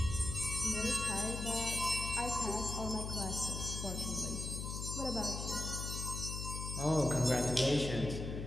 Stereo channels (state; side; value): noise; left; hum, 5 dB below the sound